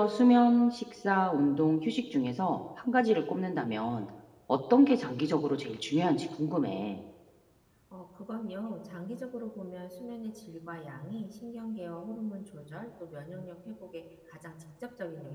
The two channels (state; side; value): identical; both; correlation 1.00